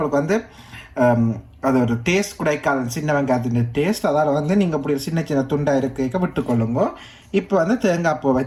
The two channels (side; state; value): both; identical; correlation 1.00